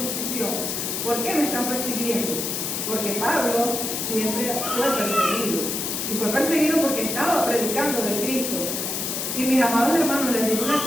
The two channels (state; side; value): noise; left; hiss, 2 dB below the sound